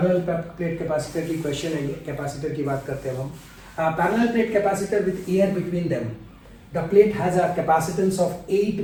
प्लेट कैपेसिटर की क्वेश्चन है ये. कैपेसिटर की बात करते हैं हम. Parallel plate capacitor with air between them. The plate has a capacitance of 8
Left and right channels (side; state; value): both; identical; correlation 1.00